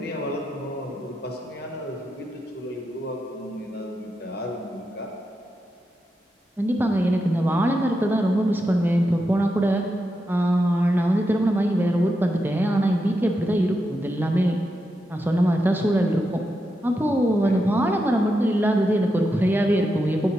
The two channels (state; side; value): normal; both; correlation 0.86